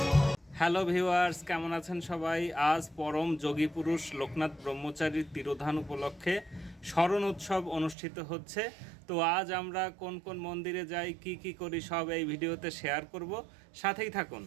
হ্যালো ভিউয়ার্স, কেমন আছেন সবাই? আজ পরম যোগী পুরুষ লোকনাথ ব্রহ্মচারীর তিরোধান উপলক্ষে স্মরণ উৎসব অনুষ্ঠিত হচ্ছে। তো আজ আমরা কোন কোন মন্দিরে যাই, কি কি করি, সব এই ভিডিওতে শেয়ার করব, সাথেই থাকুন।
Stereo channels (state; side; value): drops out; left; at 8.0 s